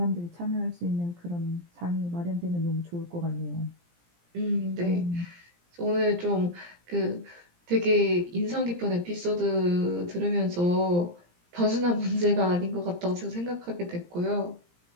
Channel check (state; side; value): late; left; 17 ms